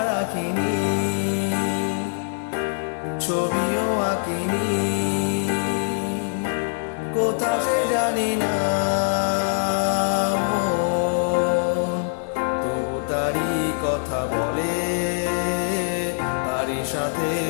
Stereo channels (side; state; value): right; silent; digital silence